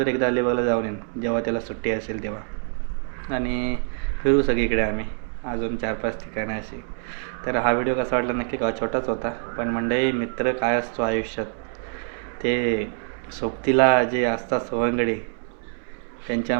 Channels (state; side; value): silent; left; 62 dB below the other